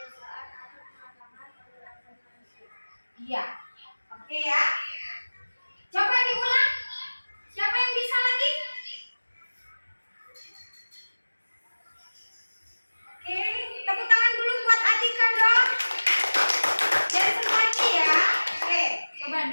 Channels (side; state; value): both; inverted; correlation -1.00